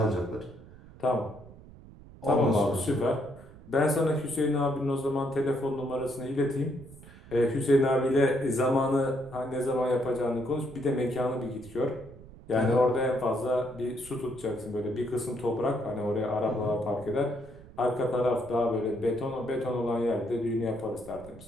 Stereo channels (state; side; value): noise; right; rumble, 19 dB below the sound